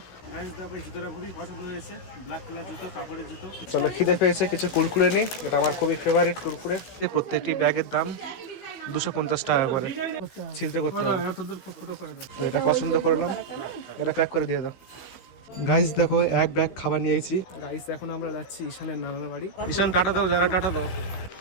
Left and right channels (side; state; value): right; late; 16 ms